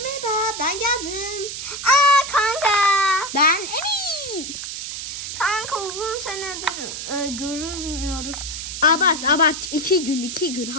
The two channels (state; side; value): noise; right; hiss, 7 dB below the sound